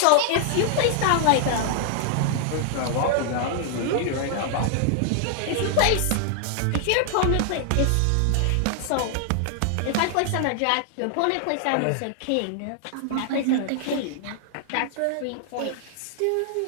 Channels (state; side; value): different; both; correlation 0.00